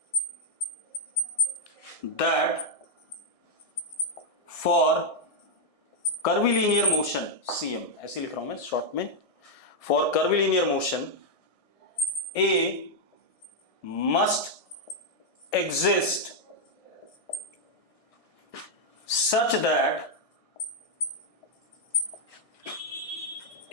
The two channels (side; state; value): right; late; 1.6 ms